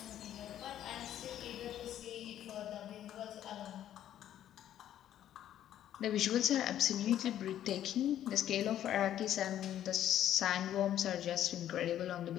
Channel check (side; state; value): right; quieter; 11.4 dB